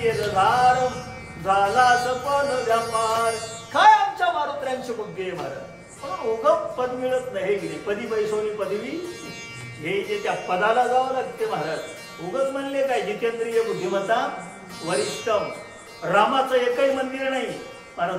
धार झाला सपन व्यापार. काय आमच्या मारुत्र्यांची बुद्धी आहे महाराज. पण उगम पद मिळत नाही की पदी पैसोनी पदवी हे जे त्या पदाला जावं लागते महाराज. उगच म्हणले काय जितेंद्रिय बुद्धिमत्ता वरिष्ठम. रामाचं एकही मंदिर नाही महाराज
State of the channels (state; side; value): identical; both; correlation 1.00